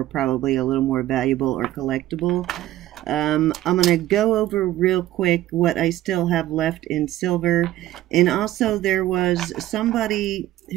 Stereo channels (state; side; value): quieter; left; 14.6 dB